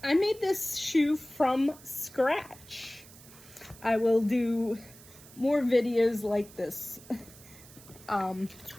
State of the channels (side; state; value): right; noise; hiss, 21 dB below the sound